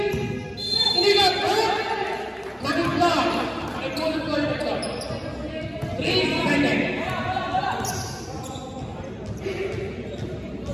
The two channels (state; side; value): identical; both; correlation 1.00